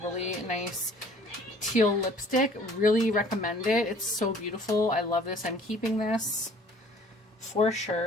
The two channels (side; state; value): both; normal; correlation 0.53